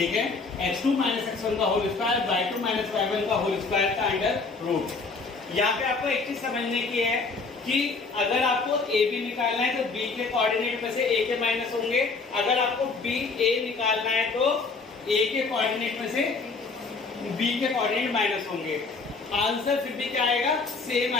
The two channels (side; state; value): right; quieter; 4.2 dB